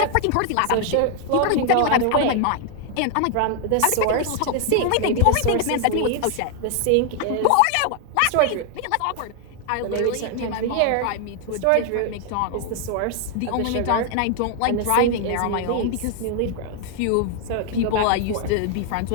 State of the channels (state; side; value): different; both; correlation 0.00